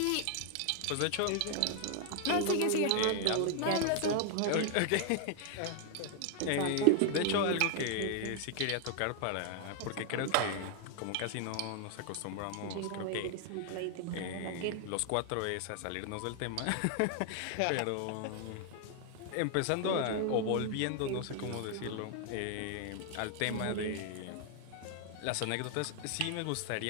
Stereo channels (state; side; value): different; both; correlation 0.00